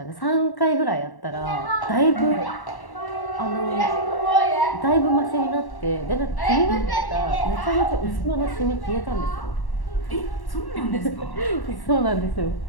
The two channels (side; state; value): right; late; 1.1 ms